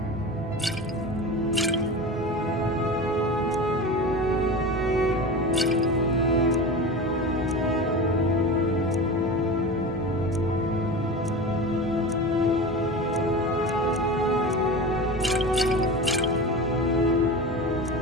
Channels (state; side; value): normal; both; correlation 0.29